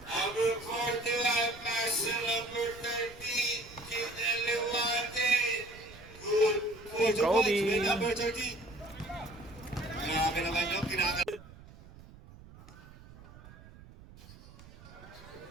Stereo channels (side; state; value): right; noise; rumble, 20 dB below the sound